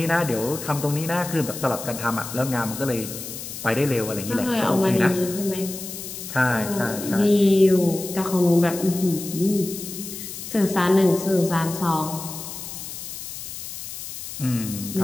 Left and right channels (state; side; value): noise; left; hiss, 9 dB below the sound